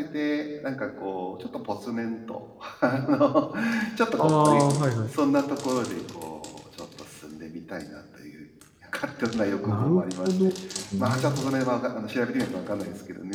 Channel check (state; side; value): identical; both; correlation 1.00